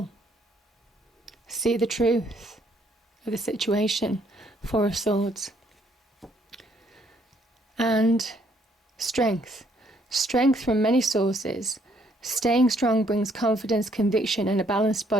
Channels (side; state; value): both; normal; correlation 0.67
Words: See the truth of the situation. Four of Swords. And strength. Strength from many sources. Staying strong brings confidence, conviction, and a balanced